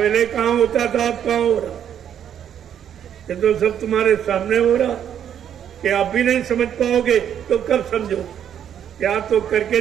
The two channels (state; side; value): quieter; left; 9.3 dB